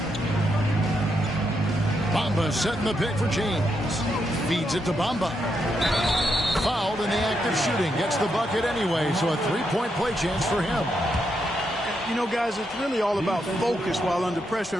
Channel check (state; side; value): normal; both; correlation 0.81